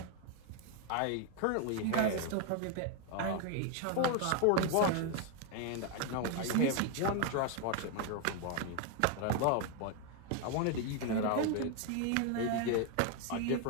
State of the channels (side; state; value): both; different; correlation 0.01